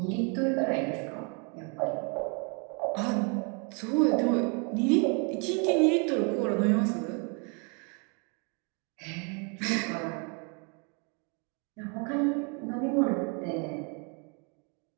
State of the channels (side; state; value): left; quieter; 35.1 dB